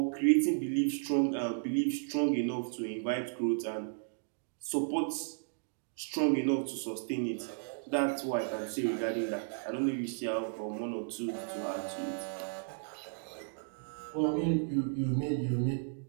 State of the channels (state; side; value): silent; left; digital silence